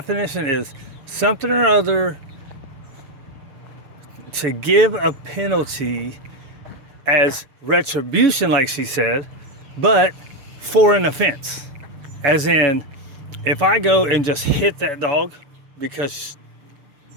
is something or other to give a penalty as retribution, like she said, but for an offense. As in, if I go and just hit that dog because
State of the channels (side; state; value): left; late; 6.7 ms